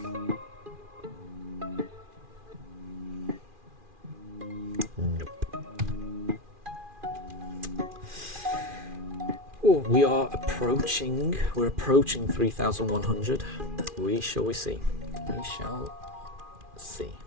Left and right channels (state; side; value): late; left; 2.4 ms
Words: Oh, we're approaching 3,100. We shall see.